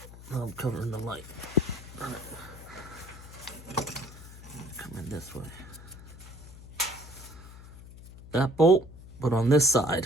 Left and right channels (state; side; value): noise; left; hum, 16 dB below the sound